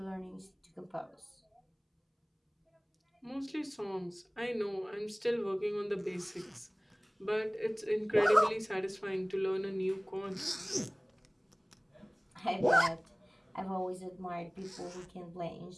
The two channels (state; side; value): identical; both; correlation 1.00